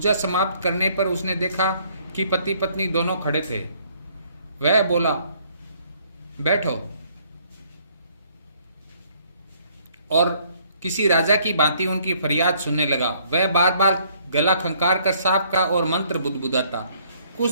समाप्त करने पर उसने देखा कि पति पत्नी दोनों खड़े थे। वह बोला, बैठो, और किसी राजा की भांति उनकी फरियाद सुनने लगा। वह बार बार गला खंकार कर सांप का और मंत्र बुदबुदाता। कुछ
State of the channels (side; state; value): both; inverted; correlation -0.63